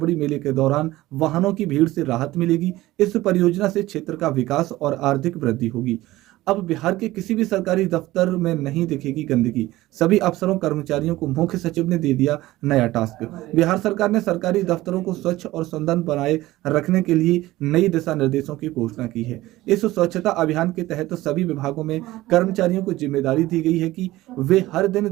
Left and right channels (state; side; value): quieter; left; 17.2 dB